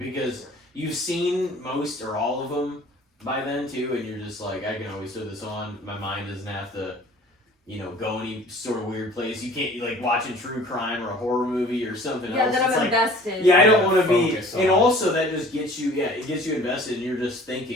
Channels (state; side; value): normal; both; correlation 0.49